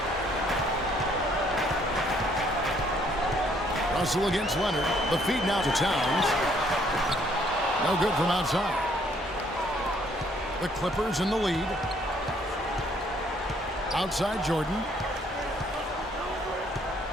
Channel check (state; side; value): normal; both; correlation 0.65